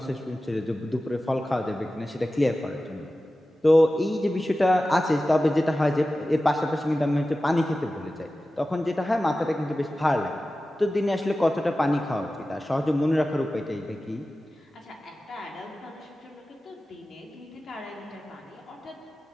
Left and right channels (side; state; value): both; normal; correlation 0.95